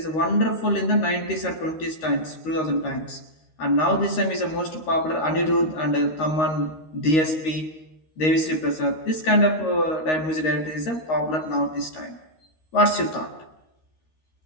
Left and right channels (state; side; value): late; right; 13 ms